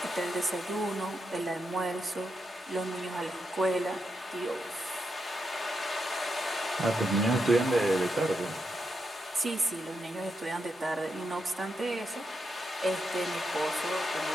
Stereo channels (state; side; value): normal; both; correlation 0.84